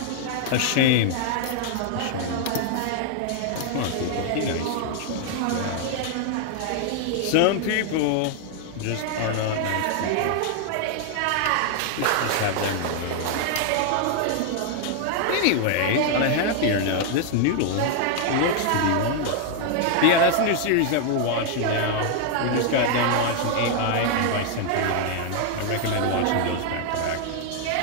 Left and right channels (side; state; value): both; different; correlation 0.00